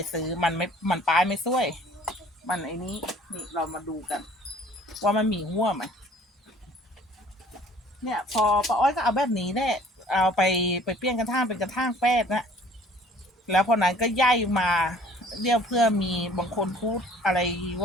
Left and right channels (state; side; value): normal; both; correlation 0.53